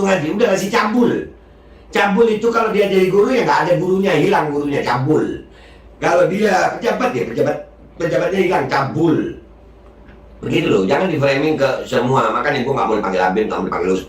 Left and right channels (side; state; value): both; identical; correlation 1.00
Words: ngaji, udah si cabul. Cabul itu kalau dia jadi guru ya nggak ada gurunya, hilang gurunya, cabul. Kalau dia pejabat ya pejabatnya hilang, cabul. Begitu loh, jangan di framing ke semua. Makanya gue nggak boleh panggil Habib, nggak boleh panggil